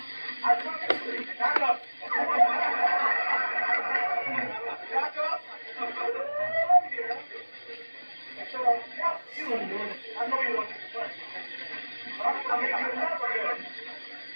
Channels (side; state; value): both; inverted; correlation -1.00